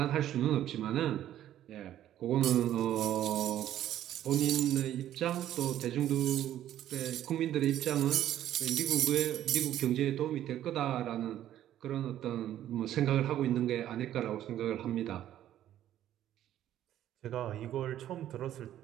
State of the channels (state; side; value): quieter; left; 12.0 dB